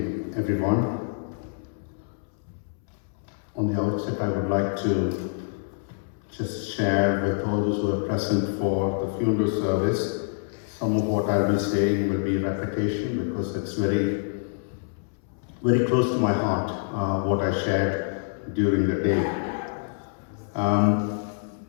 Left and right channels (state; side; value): silent; right; 61 dB below the other